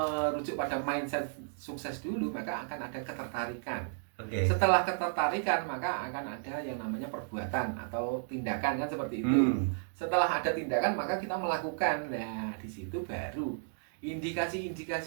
pada mindset sukses dulu, maka akan ada ketertarikan. Oke. Setelah ketertarikan, maka akan ada yang namanya perbuatan atau tindakan kan seperti itu. Setelah ada tindakan, maka kita melakukan. Nah, di situ baru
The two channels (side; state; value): left; silent; digital silence